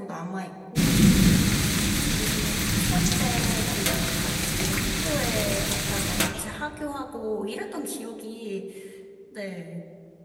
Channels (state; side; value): identical; both; correlation 1.00